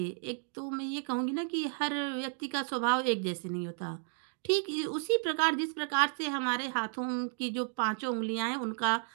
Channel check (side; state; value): left; silent; 56 dB below the other